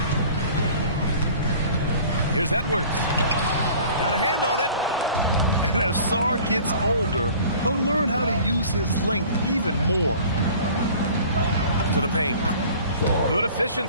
Here's Edwards. Got a hand on it. And as Sarr gets older, he'll learn how to use his length even more. To the paint. Good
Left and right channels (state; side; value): inverted; both; correlation -0.46